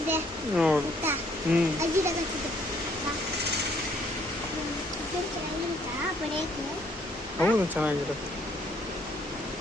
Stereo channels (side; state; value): both; normal; correlation 0.65